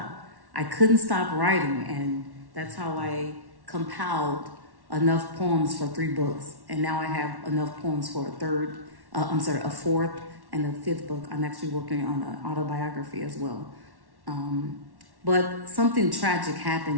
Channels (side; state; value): left; late; 1.1 ms